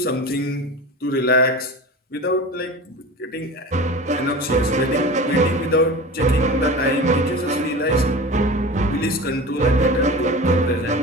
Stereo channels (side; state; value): both; normal; correlation 0.32